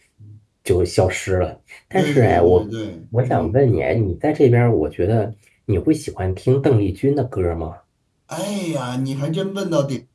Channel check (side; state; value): both; identical; correlation 1.00